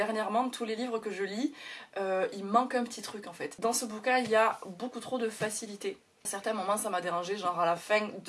tous les livres que je lis, il manque un petit truc en fait. Dans ce bouquin il y a beaucoup trop de facilité. À certains moments ça m'a dérangé, genre à la fin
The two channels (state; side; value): identical; both; correlation 1.00